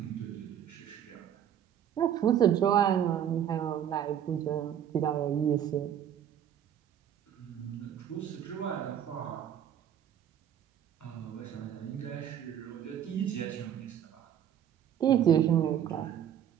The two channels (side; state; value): left; quieter; 9.7 dB